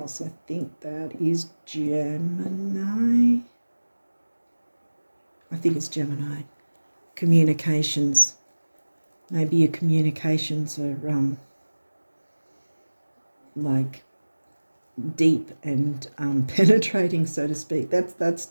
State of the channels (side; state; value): both; inverted; correlation -1.00